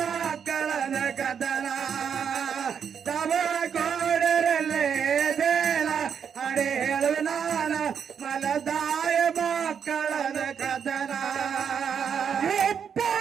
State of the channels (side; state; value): left; quieter; 7.4 dB